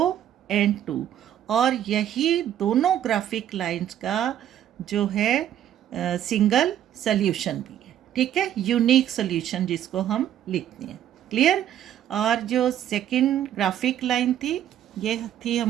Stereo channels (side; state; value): left; quieter; 11.0 dB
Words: and 2, और यही दोनों ग्राफिक लाइंस का जो है सिंगल सॉल्यूशन भी है। ठीक है, यूनिक सॉल्यूशन जिसको हम लिखते हैं, क्लियर। और जो सेकंड ग्राफिक लाइन थी ये थी